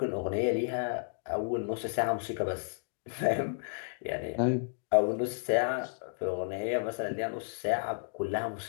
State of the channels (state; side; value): silent; right; digital silence